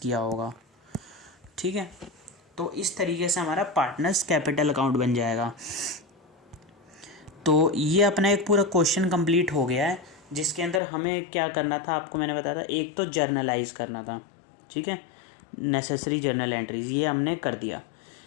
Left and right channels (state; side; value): drops out; right; at 10.8 s